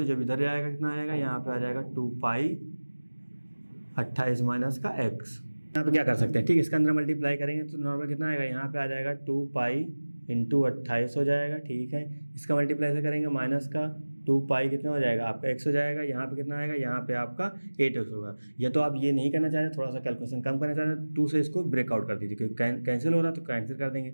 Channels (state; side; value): inverted; both; correlation -1.00